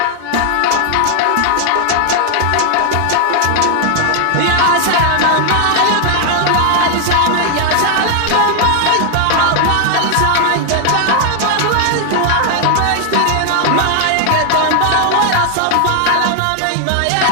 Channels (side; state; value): both; different; correlation 0.00